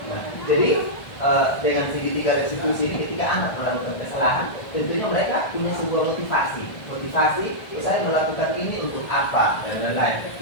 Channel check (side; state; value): right; late; 1.5 ms